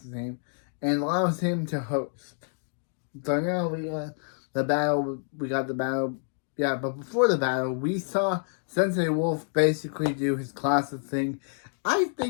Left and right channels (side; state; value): right; silent; digital silence